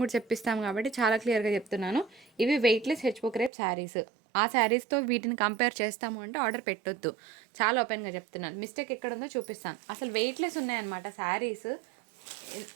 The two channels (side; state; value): left; drops out; at 3.5 s